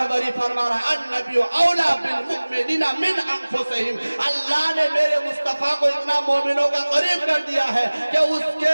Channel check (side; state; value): both; inverted; correlation -1.00